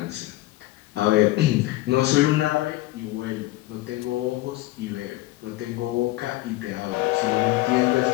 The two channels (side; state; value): right; quieter; 17.9 dB